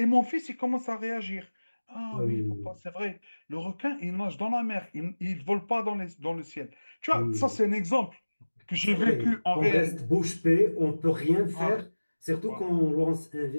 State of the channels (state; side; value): inverted; both; correlation -1.00